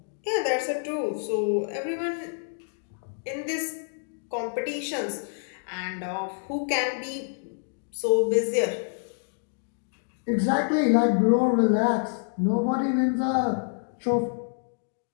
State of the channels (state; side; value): silent; right; digital silence